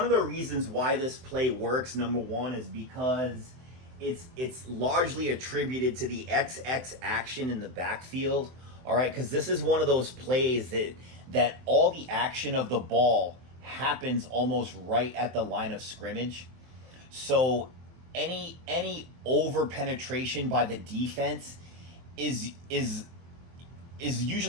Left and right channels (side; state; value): left; late; 23 ms